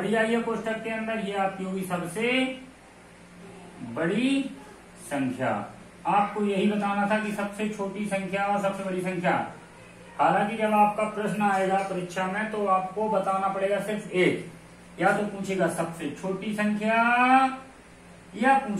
आई है कोष्टक के अंदर ये आपकी होगी सबसे बड़ी संख्या। आपको यही बताना था कि सबसे छोटी संख्या और सबसे बड़ी संख्या। हालांकि जब आपका प्रश्न आएगा परीक्षा में तो आपको बताना पड़ेगा सिर्फ एक, या तो पूछेगा सबसे छोटी संख्या या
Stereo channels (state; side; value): identical; both; correlation 1.00